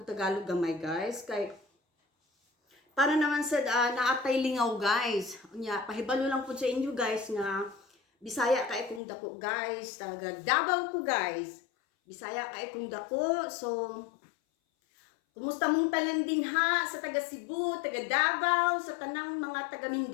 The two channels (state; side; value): drops out; right; at 9.0 s